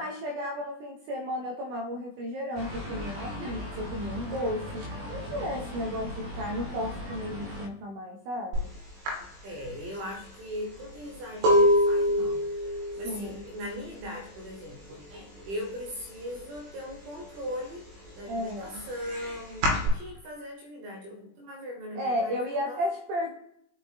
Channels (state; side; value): late; left; 20 ms